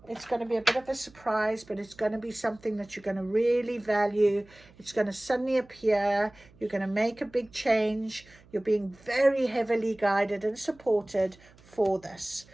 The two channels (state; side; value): noise; right; hum, 26 dB below the sound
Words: It's going to be a bit of a surprise, but it's going to be something that you're going to really value. It's going to suddenly appear. You're going to make a big change. You're being very heavily guided and supported for this.